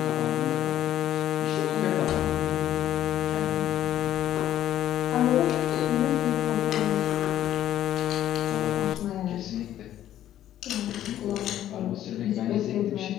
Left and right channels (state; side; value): quieter; right; 12.1 dB